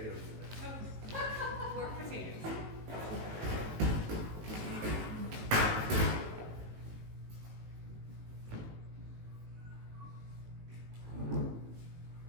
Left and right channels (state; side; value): late; left; 19 ms